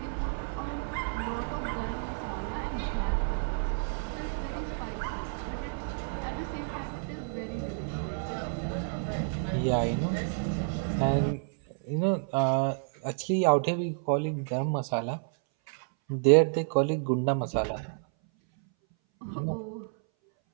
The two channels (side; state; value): left; silent; 58 dB below the other